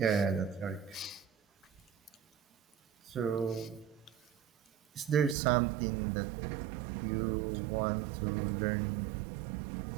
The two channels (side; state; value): left; drops out; at 5.4 s